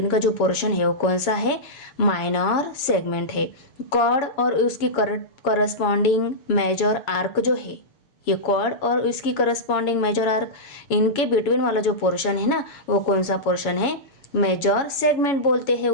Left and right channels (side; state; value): right; late; 7.2 ms